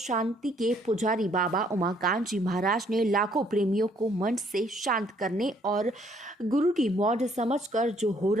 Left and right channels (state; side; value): normal; both; correlation 0.65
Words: के पुजारी बाबा उमाकांत जी महाराज ने लाखों प्रेमियों को मन से शांत करने और गुरु की मौज समझकर जो हो